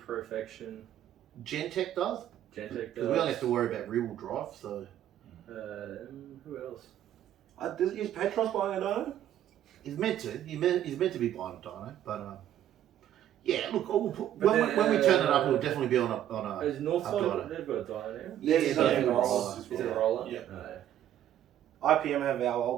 Perfection, Gentech does. Gentech Because does. we only have to worry about rear wheel drive. So Who else? Is Petros buying a dyno? he's meant to. He's meant to be buying a dyno, but yeah. Look, when we turn it up, it'll definitely be on a. Is Northside hub dyno. they've got a dyno now? Yeah, Is yeah, it a yeah. roller? Is it a roller? Yeah. No. IPM have our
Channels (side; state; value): left; quieter; 11.4 dB